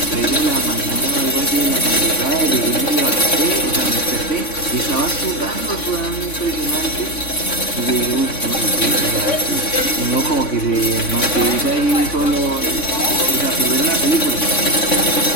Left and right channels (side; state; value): right; late; 3.5 ms